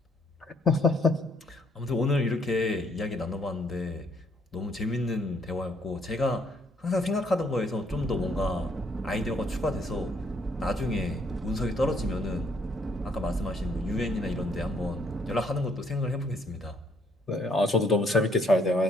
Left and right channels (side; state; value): both; normal; correlation 0.68